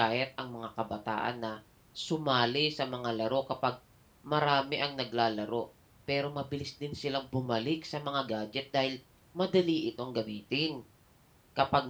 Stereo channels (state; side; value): identical; both; correlation 1.00